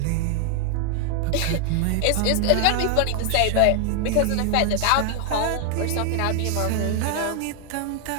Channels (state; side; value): different; both; correlation 0.00